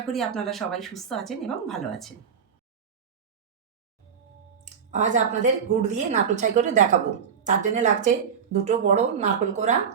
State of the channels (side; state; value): left; quieter; 7.1 dB